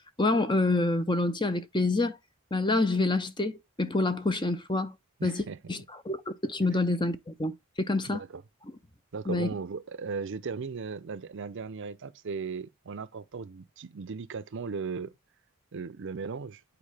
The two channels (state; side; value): normal; both; correlation 0.60